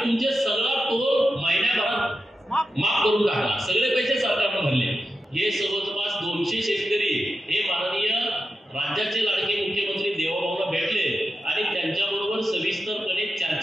तुमचे सगळा टोल महिन्याभरात माफ करून टाकला, सगळे पैसे सरकारने भरले। हे जवळपास 200 शेतकरी हे माननीय राज्याचे लाडके मुख्यमंत्री देवाभाऊला भेटले आणि त्यांच्याबरोबर सविस्तरपणे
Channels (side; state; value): both; normal; correlation 0.89